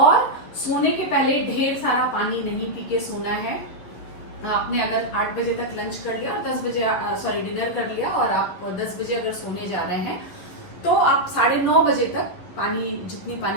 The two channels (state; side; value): late; right; 11 ms